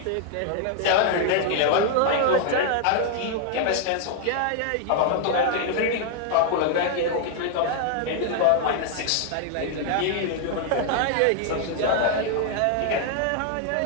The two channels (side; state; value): both; different; correlation 0.00